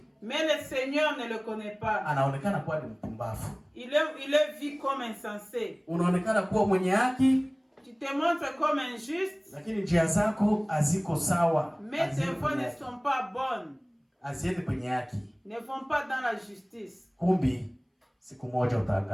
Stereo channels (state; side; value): identical; both; correlation 1.00